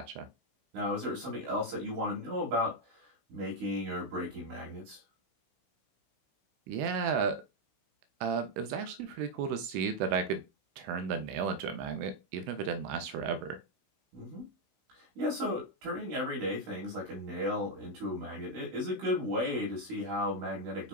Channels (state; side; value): late; left; 16 ms